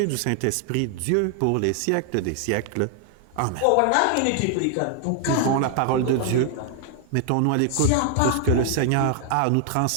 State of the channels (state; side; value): different; both; correlation 0.00